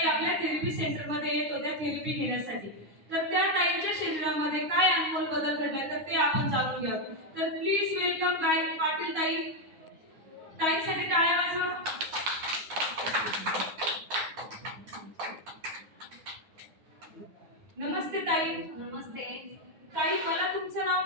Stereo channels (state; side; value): late; left; 9.6 ms